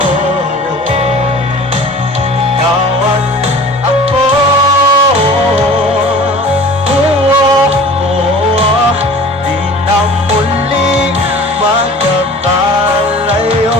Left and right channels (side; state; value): both; normal; correlation 0.43